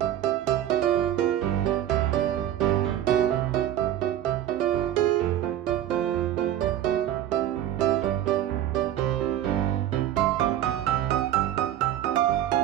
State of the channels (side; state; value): left; quieter; 11.9 dB